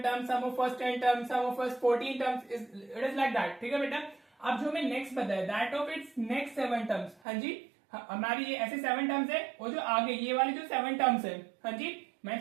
terms, sum of first 10 terms, sum of first 14 terms, it is like that. ठीक है बेटा, अब जो हमें नेक्स्ट बताया, that of its next 7 terms. हाँ जी, हमारी ये ऐसे 7 टर्म्स है, और जो आगे ये वाली जो 7 टर्म्स है, हाँ जी,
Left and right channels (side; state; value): left; drops out; at 7.2 s